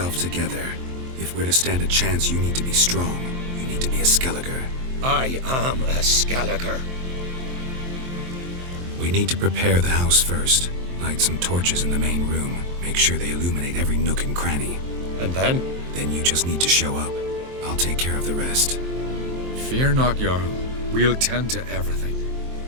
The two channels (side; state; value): left; late; 23 ms